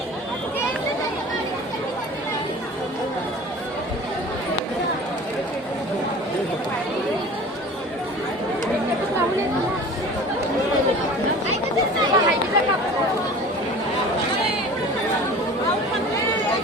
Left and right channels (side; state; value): both; normal; correlation 0.40